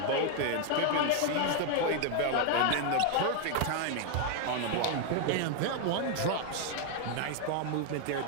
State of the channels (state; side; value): different; both; correlation 0.01